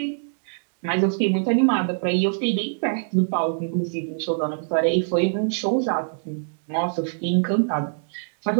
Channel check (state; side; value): silent; left; digital silence